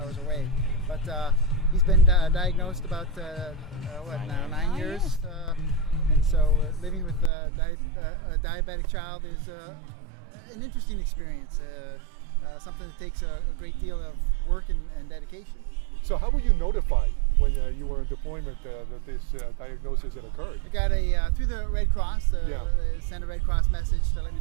away. But he's been diagnosed about 9 years, and so living with a diabetic child is an interesting experience. Something that takes a great deal of work and dedication. So how were you notified when you were in deployment that this diagnosis had occurred? I got through the Red Cross. They sent a Red Cross message to let me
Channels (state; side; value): drops out; left; at 7.3 s